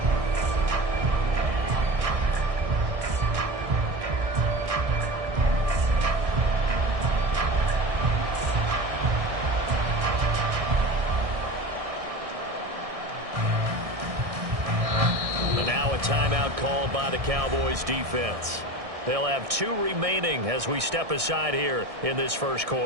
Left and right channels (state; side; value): late; left; 1.6 ms